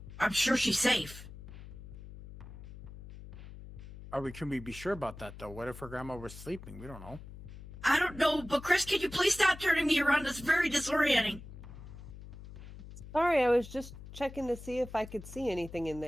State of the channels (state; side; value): noise; left; hum, 14 dB below the sound